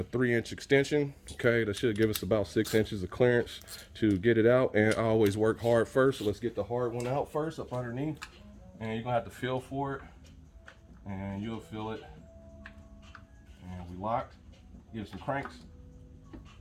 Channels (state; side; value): identical; both; correlation 1.00